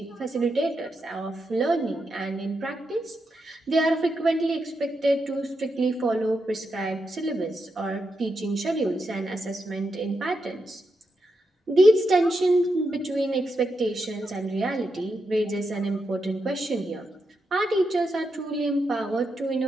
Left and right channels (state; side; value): normal; both; correlation 0.85